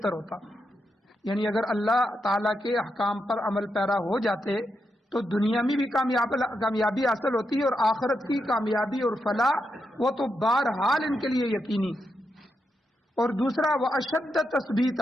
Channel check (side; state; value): both; normal; correlation 0.84